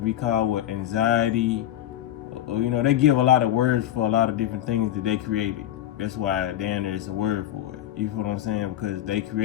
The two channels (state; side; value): quieter; right; 12.4 dB